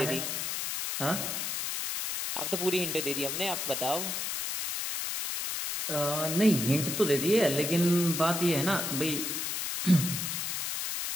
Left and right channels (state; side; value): noise; left; hiss, 2 dB below the sound